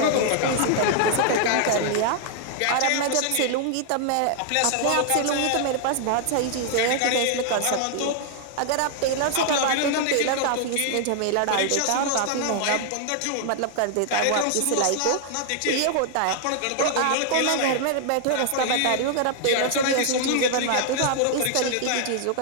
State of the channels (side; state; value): both; different; correlation 0.00